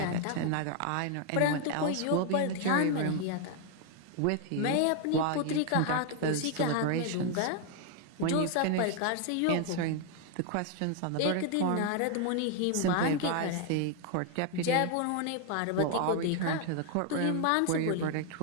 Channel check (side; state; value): both; different; correlation 0.00